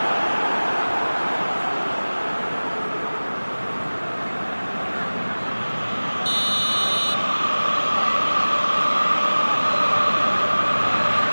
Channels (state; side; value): inverted; both; correlation -1.00